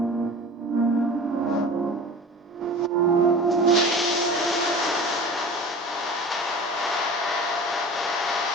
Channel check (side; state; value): both; normal; correlation 0.37